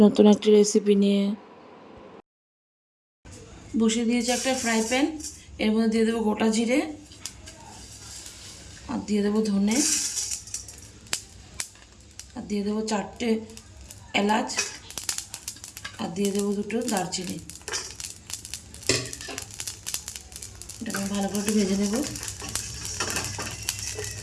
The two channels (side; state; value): both; identical; correlation 1.00